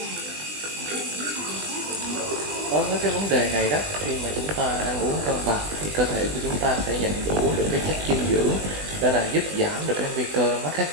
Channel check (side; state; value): left; late; 20 ms